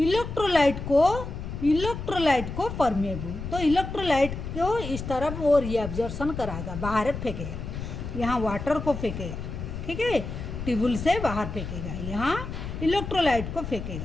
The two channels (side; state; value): left; noise; rumble, 7 dB below the sound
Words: को परमिएबल। तो इलेक्ट्रोलाइट को इस तरफ वो रीअब्जॉर्प्शन कराएगा, बाहर फेंकेगा, यहाँ वाटर को फेंकेगा, ठीक है, ट्यूबुल से बाहर फेंकेगा, यहाँ इलेक्ट्रोलाइट को